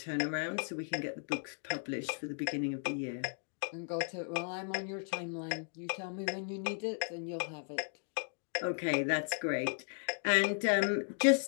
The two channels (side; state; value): right; silent; 54 dB below the other